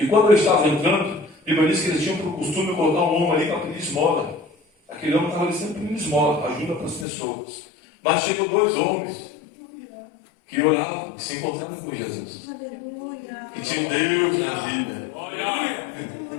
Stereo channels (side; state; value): right; drops out; at 7.1 s